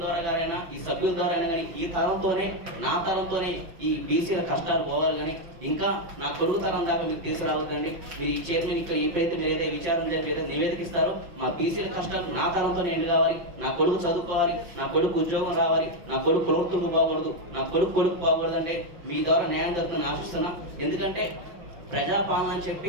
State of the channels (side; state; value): left; late; 5.4 ms